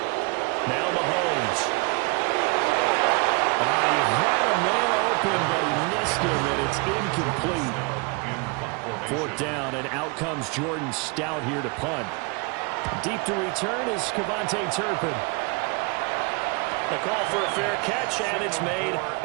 Now Mahomes. He had a man open, but he missed him, and it's incomplete. 4th down, and out comes Jordan Stout here to punt. Deep to return is Kevontae Turpin. The call for a fair catch, and it's made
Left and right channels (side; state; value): left; quieter; 29.7 dB